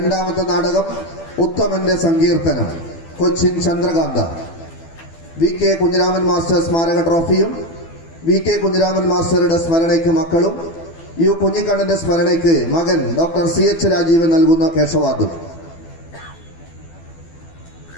നാടകം ഉത്തമന്റെ സങ്കീർത്തനം, കൊച്ചിൻ ചന്ദ്രകാന്ത. VK കുഞ്ഞിരാമൻ മാസ്റ്റർ സ്മാരക ട്രോഫിയും VK കുഞ്ഞിരാമൻ മാസ്റ്ററുടെ സ്മരണയ്ക്ക് മക്കളും U കുഞ്ഞിക്കണ്ണന്റെ സ്മരണയ്ക്ക് മകൻ ഡോക്ടർ CH രാജീവൻ നൽകുന്ന കേശവാദം.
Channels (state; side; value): late; right; 12 ms